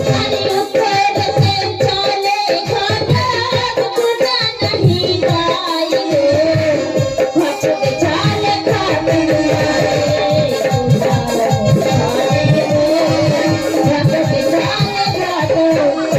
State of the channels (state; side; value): identical; both; correlation 1.00